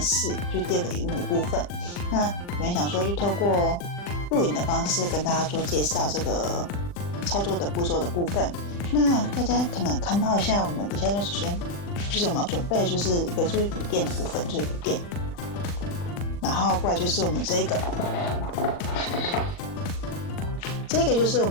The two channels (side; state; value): right; late; 40 ms